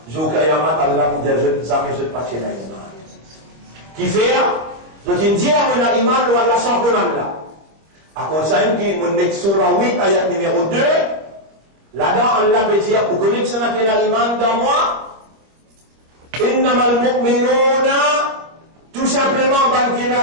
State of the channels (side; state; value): left; late; 25 ms